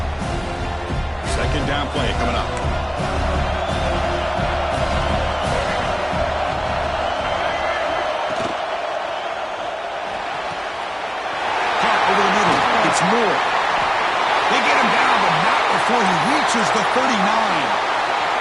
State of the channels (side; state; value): both; identical; correlation 1.00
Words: Second down play coming up. Caught over the middle. It's Moore. They get him down, but not before he reaches the 39.